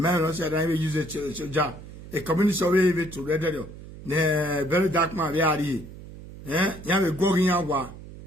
also said I will use a job. A community survey to read ne very dark man we are here. Eh? You have a going out.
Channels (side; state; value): right; noise; hum, 15 dB below the sound